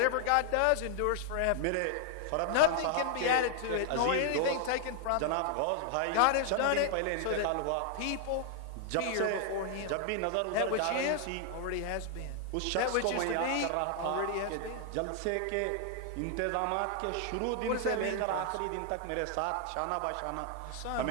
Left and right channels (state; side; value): different; both; correlation 0.00